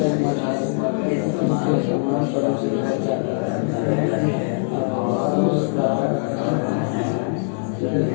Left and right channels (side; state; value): right; silent; digital silence